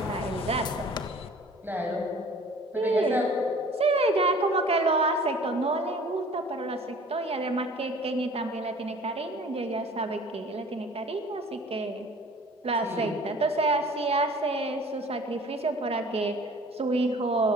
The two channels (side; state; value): both; normal; correlation 0.48